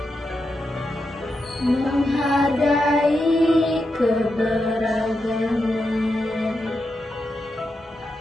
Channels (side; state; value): both; normal; correlation 0.86